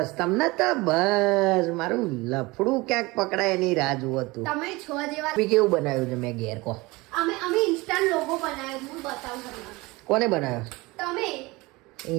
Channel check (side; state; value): left; quieter; 22.8 dB